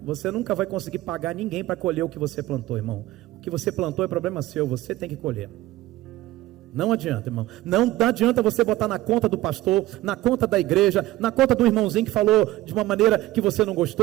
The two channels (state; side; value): quieter; left; 16.4 dB